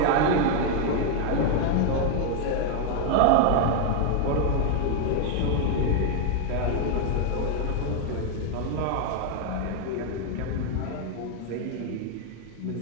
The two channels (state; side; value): different; both; correlation 0.00